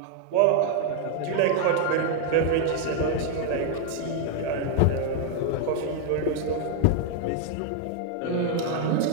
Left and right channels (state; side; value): different; both; correlation 0.00